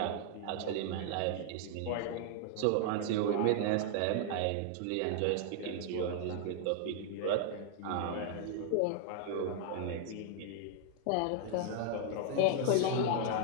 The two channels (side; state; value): both; different; correlation -0.01